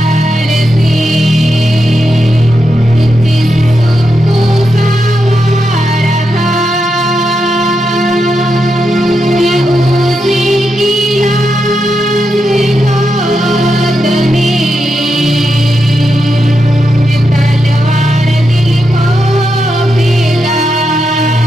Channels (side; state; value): both; normal; correlation 0.85